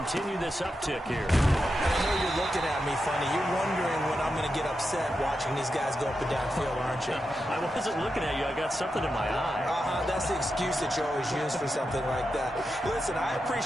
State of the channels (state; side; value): normal; both; correlation 0.88